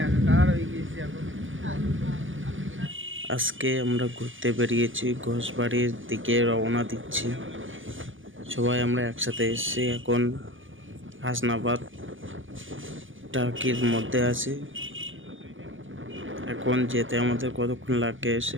একাকার হয়ে গিয়েছি এখন। আজকে আমরা ঘুরতে বেরিয়েছি, ঘোষবাড়ির দিকে রওনা দিচ্ছি। সবাই আমরা একসাথে এসেছি, এখন হাসনাবাদ টার্কির মধ্যে আছি। এখন যেতে আমাদের কতক্ষণ লাগে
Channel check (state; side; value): late; left; 0.57 ms